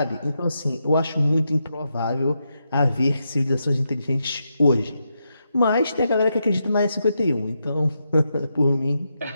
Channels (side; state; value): both; inverted; correlation -0.84